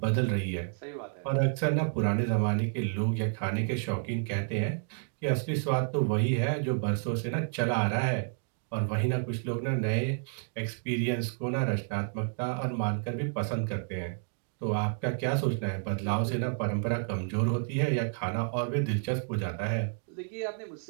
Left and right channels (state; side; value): silent; left; 58 dB below the other